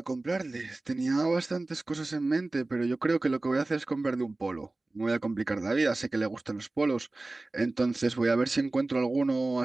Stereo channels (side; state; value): left; quieter; 3.0 dB